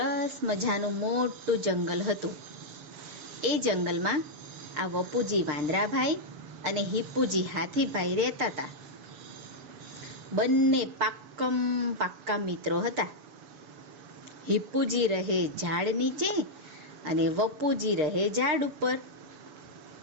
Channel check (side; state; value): left; late; 6.6 ms